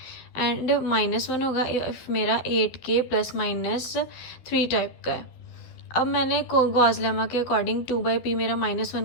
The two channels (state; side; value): late; right; 12 ms